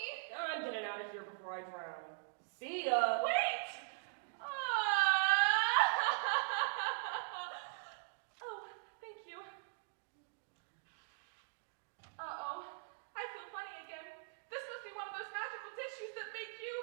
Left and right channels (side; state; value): left; silent; digital silence